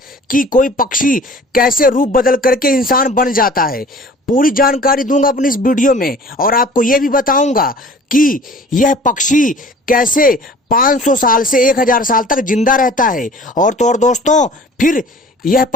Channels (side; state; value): both; normal; correlation 0.47